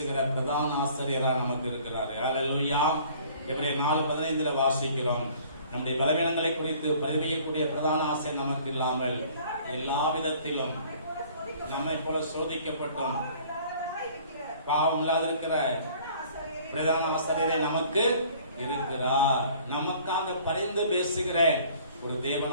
பிரதான ஆசிரியராக நமக்கு இருக்கிறார். அல்லேலூயா. எபிரேயர் 4:15 வாசிக்கிறோம். நம்முடைய பலவீனங்களை குறித்து பரிவையக்கூடிய பிரதான ஆசை நமக்கு இல்லாமல் எல்லா விதத்திலும் நம்மை போல சோதிக்கப்பட்டும் பாவம் இல்லாதிருக்கிற பிரதான ஆசிரியரே நமக்கு இருக்கிறார். நமக்காக பரிந்து பேசுகிற ஒரு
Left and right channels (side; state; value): both; inverted; correlation -0.53